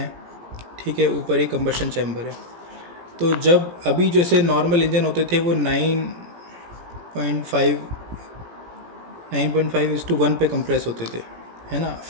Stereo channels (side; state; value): left; late; 17 ms